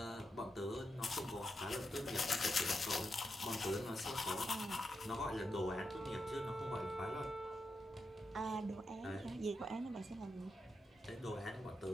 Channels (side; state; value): both; normal; correlation 0.85